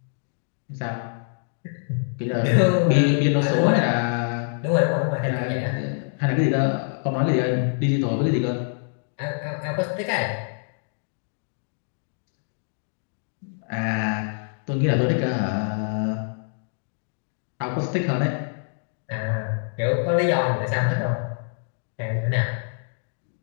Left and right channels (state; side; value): silent; right; digital silence